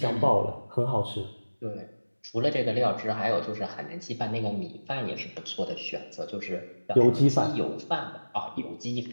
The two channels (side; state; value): both; inverted; correlation -1.00